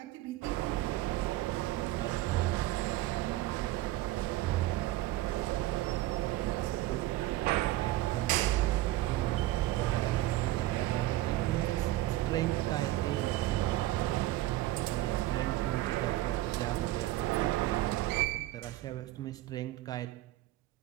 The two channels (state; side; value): quieter; left; 16.3 dB